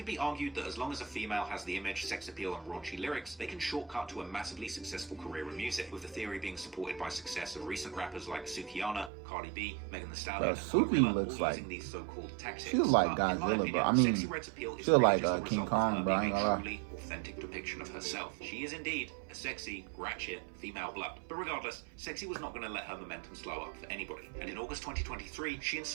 be argued that as long as a female has the image, sex appeal, and raunchy lyrics, they can shortcut to a massively successful career in music. With the theory being supported by success of recent rappers like Sukihana, Cardi B, Megan Thee Stallion, and Suki looks all like using these so-called tactics. she looks like Godzilla, bro. I mean, she looks like King Kong, bro. I ain't gonna lie. Authentic depiction of herself. She is indeed a sexy, ratchet, female blood. But regardless, Sexyy was not going to let her momentum slow up for anybody. And in August 2023, she and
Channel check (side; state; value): left; drops out; at 9.1 s